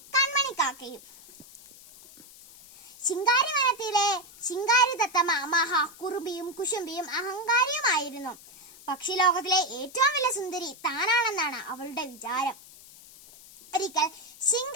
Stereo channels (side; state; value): left; noise; hiss, 21 dB below the sound